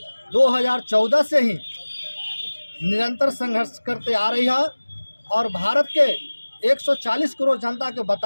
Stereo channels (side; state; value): both; inverted; correlation -1.00